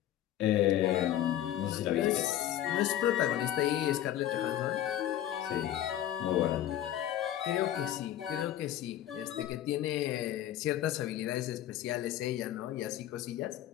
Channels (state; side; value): quieter; right; 12.2 dB